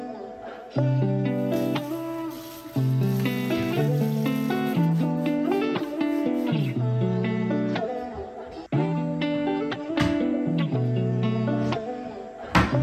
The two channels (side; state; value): both; identical; correlation 1.00